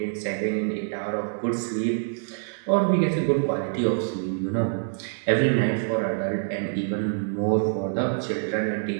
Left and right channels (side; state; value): left; silent; 61 dB below the other